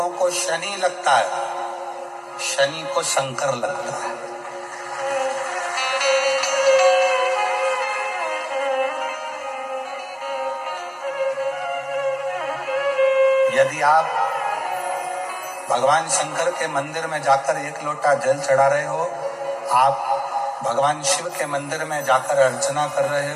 को शनि लगता है, शनि को शंकर लगता है। यदि आप भगवान शंकर के मंदिर में जाकर 1 लोटा जल चढ़ा रहे हो, आप भगवान शिव के मंदिर में जाकर अर्चना कर रहे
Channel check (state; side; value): identical; both; correlation 1.00